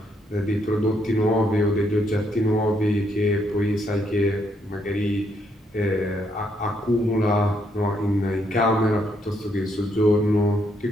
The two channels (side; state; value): both; normal; correlation 0.74